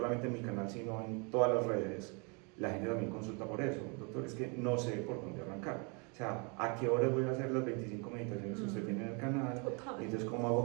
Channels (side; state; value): left; quieter; 33.5 dB